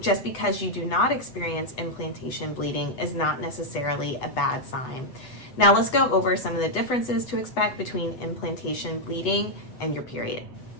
because you do not experience implantation bleeding is not necessarily a bad sign. Now, let's go over some of the differences to expect between implantation bleeding and your period.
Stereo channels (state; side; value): late; right; 8.1 ms